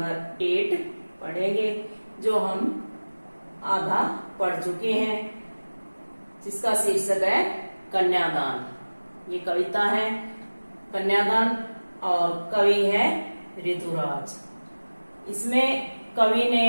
8 पढ़ेंगे, जो हम आधा पढ़ चुके हैं, जिसका शीर्षक है कन्यादान। ये कविता है कन्यादान और कवि है ऋतुराज। इसमें कवि ने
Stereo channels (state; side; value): inverted; both; correlation -1.00